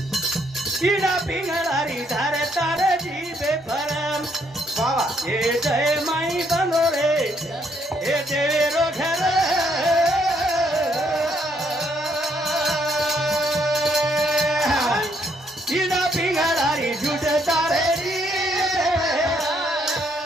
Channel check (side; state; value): both; normal; correlation 0.71